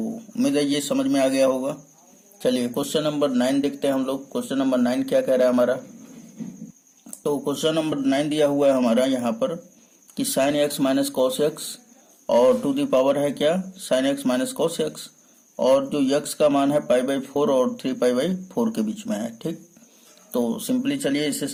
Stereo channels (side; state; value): both; identical; correlation 1.00